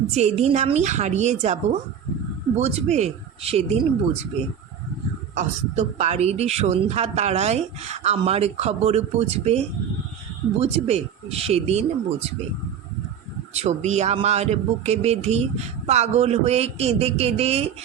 যেদিন আমি হারিয়ে যাব বুঝবে, সেদিন বুঝবে। অস্ত পাড়ির সন্ধ্যা তারায় আমার খবর বুঝবে, বুঝবে সেদিন বুঝবে। ছবি আমার বুকে বেঁধে পাগল হয়ে কেঁদে কেঁদে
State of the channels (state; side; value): quieter; left; 8.4 dB